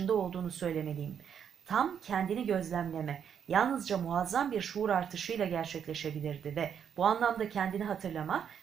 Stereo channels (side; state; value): left; quieter; 8.0 dB